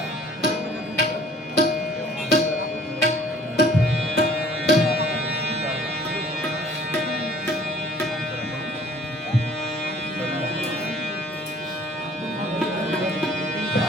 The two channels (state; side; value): normal; both; correlation 0.53